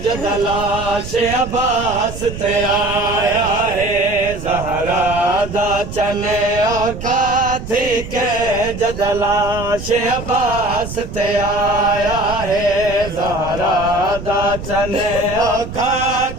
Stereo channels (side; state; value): right; noise; rumble, 10 dB below the sound